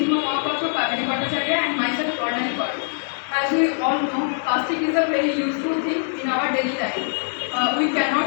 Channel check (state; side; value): silent; right; 64 dB below the other